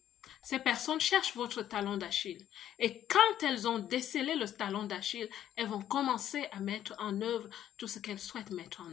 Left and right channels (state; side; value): quieter; right; 11.2 dB